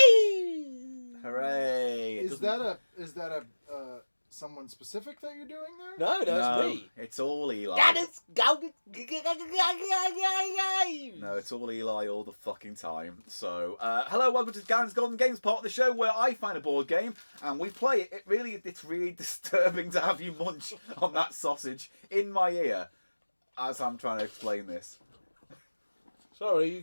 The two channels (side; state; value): both; inverted; correlation -1.00